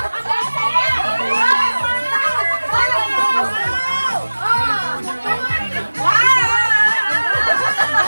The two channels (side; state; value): both; inverted; correlation -1.00